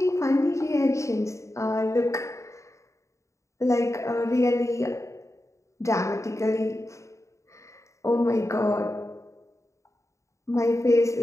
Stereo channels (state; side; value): late; right; 0.14 ms